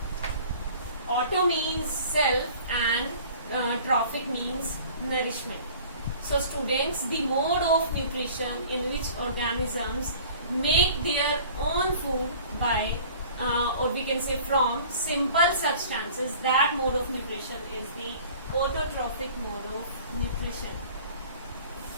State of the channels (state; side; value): inverted; both; correlation -0.48